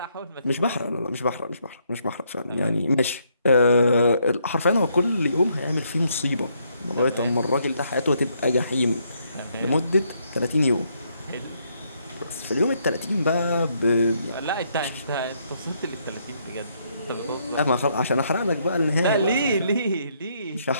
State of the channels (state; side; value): inverted; both; correlation -0.73